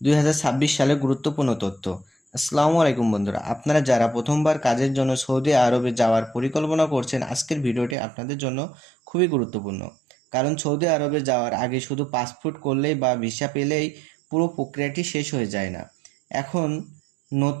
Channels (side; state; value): left; drops out; at 8.0 s